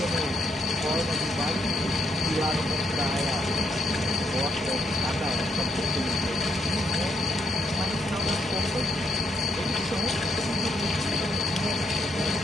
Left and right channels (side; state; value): both; normal; correlation 0.75